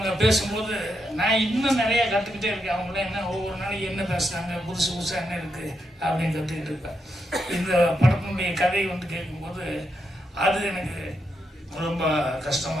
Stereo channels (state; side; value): normal; both; correlation 0.83